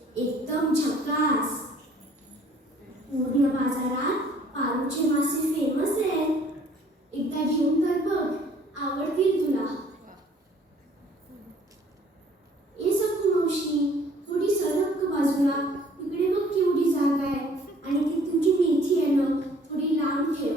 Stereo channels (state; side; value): normal; both; correlation 0.57